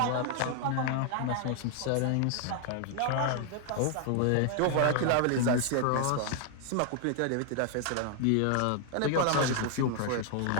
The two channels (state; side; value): different; both; correlation 0.00